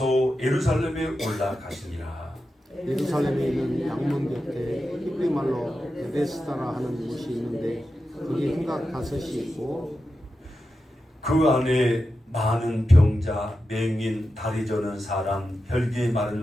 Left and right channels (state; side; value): normal; both; correlation 0.90